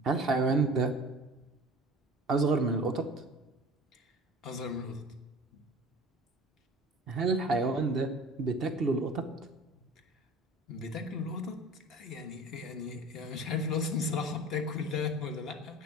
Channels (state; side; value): normal; both; correlation 0.42